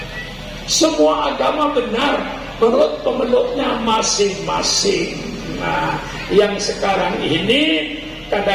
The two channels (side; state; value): both; identical; correlation 1.00